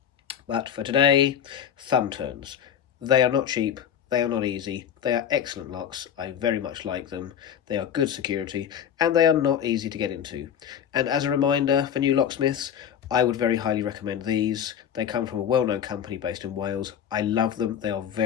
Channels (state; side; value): quieter; right; 8.9 dB